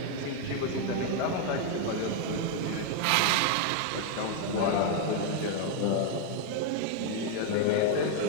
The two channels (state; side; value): different; both; correlation 0.00